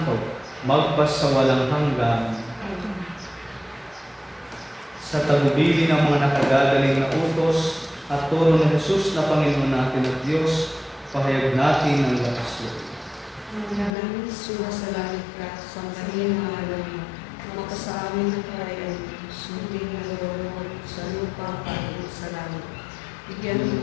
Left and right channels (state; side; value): drops out; right; at 13.9 s